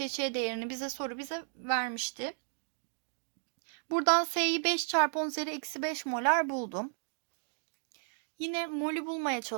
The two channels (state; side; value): silent; left; digital silence